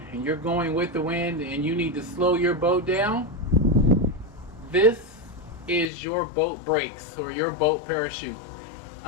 and you're going with the wind and you need to slow your boat down, this is your boat brakes or your boat parachute.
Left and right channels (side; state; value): right; drops out; at 5.9 s